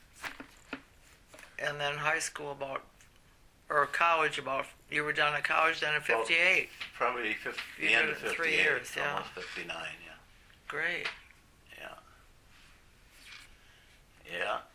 And then high school or college you were done at college then in 58. Probably You the end did of it 58, 3 years, yeah. almost 59, yeah. Great. Yeah. Yeah.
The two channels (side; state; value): both; identical; correlation 1.00